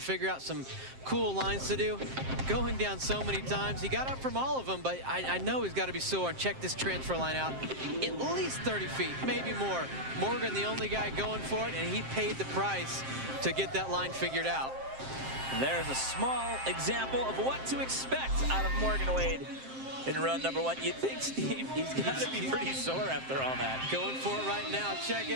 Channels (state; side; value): late; left; 7.6 ms